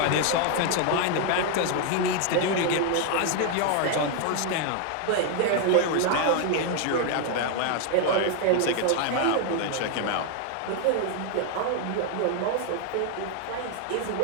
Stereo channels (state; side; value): different; both; correlation 0.00